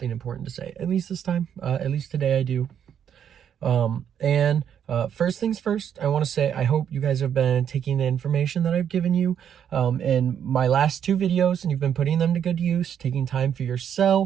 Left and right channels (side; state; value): left; quieter; 8.8 dB